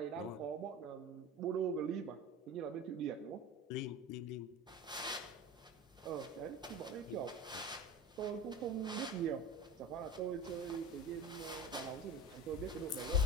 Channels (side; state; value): both; normal; correlation 0.33